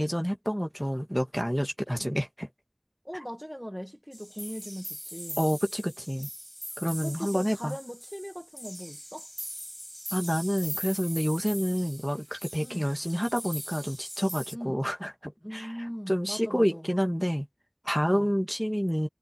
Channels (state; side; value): identical; both; correlation 1.00